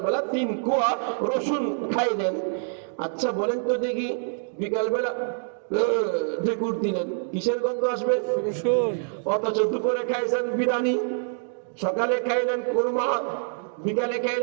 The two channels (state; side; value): silent; left; digital silence